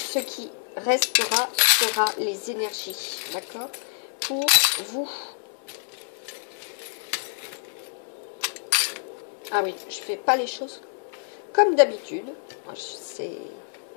qui restera sera les énergies, d'accord, pour vous. Ah oui, je fais pas les choses comme d'habitude.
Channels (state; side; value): silent; right; digital silence